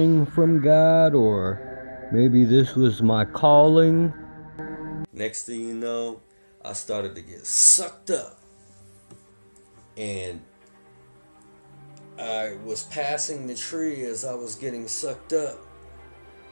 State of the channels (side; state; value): both; inverted; correlation -1.00